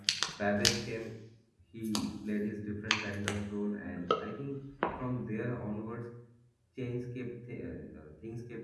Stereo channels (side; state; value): both; identical; correlation 1.00